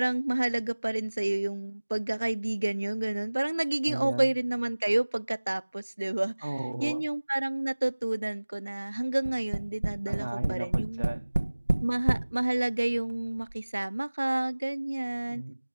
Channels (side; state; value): both; inverted; correlation -1.00